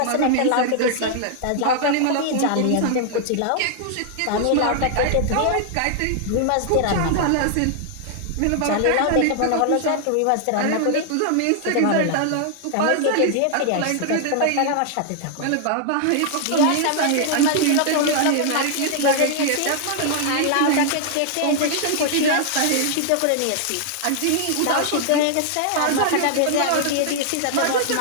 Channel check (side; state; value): both; different; correlation 0.00